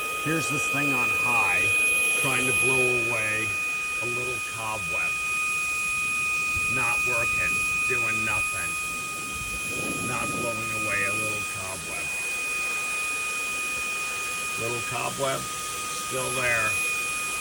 Here's this thing on high, trying to blow away a little cobweb. Not working, doing nothing. Not blowing away a little cobweb. Little cobweb, Still there.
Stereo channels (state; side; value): identical; both; correlation 1.00